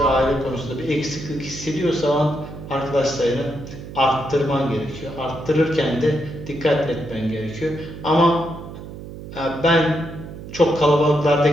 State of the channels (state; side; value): noise; right; hum, 12 dB below the sound